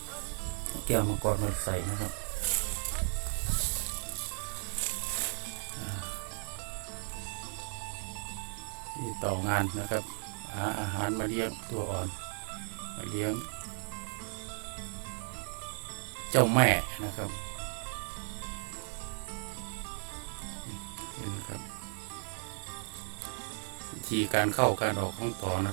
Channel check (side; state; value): left; silent; digital silence